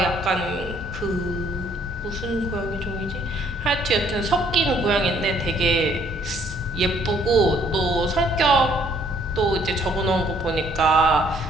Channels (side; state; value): right; noise; hum, 22 dB below the sound